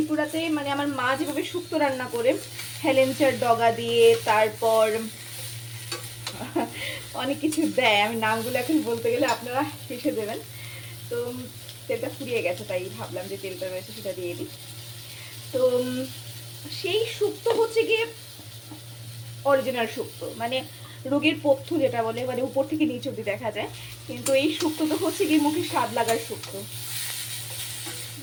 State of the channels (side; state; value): both; identical; correlation 1.00